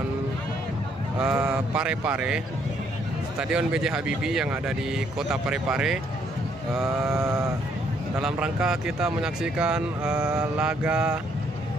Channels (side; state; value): both; normal; correlation 0.69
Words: Parepare, Stadion B.J. Habibie yang ada di kota Parepare. Dalam rangka kita menyaksikan laga